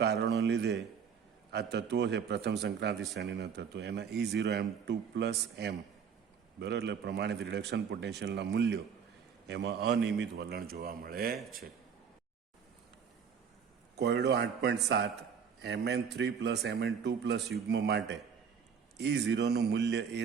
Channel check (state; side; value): quieter; left; 6.9 dB